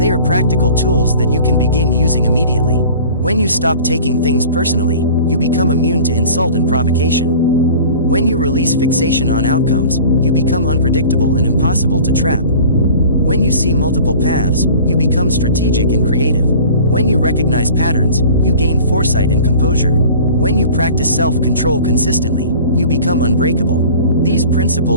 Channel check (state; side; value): inverted; both; correlation -0.44